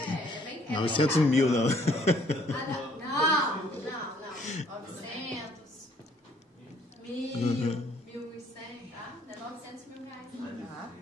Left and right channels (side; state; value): both; normal; correlation 0.62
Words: É bem 900 mil, não. Não. 900, 1.000, 1.100, tá? Não é 900 mil reais.